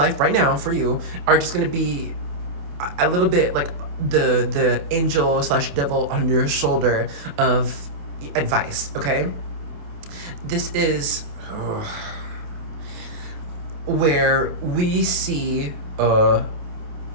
right now for you are just going to be a little bit like the angel slash devil on your shoulder of advice, okay? This is where we see,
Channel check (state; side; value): late; left; 28 ms